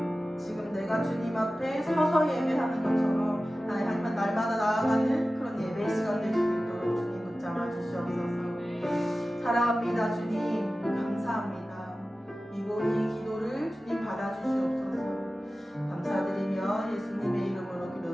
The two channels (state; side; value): normal; both; correlation 0.96